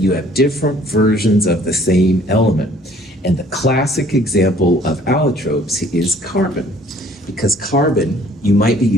have different versions of the same element. And the classic example of allotropes is carbon. Because carbon, you might be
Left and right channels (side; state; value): both; normal; correlation 0.57